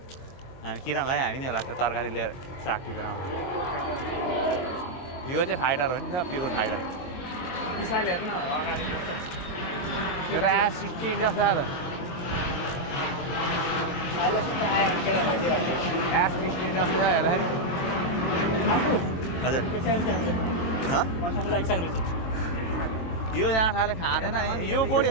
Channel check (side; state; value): right; late; 23 ms